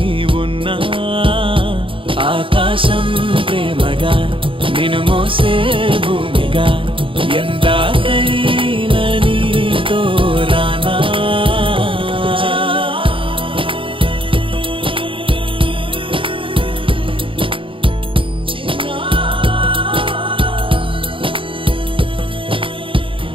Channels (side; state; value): left; late; 0.25 ms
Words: ఉన్నా ఆకాశం ప్రేమగా నిన్ను మోసే భూమిగా ఎందాకైనా నీతో రానా